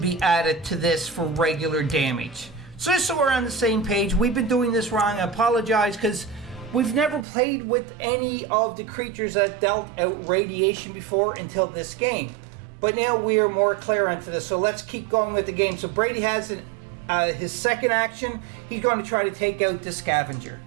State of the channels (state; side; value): drops out; left; at 7.2 s